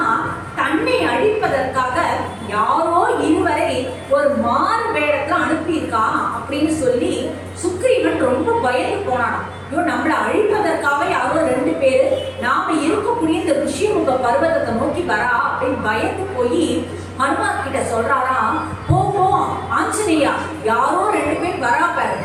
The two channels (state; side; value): identical; both; correlation 1.00